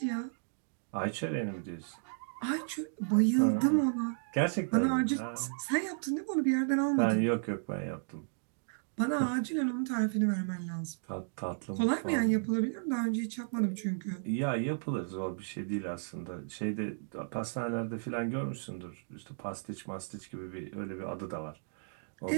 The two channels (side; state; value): left; silent; digital silence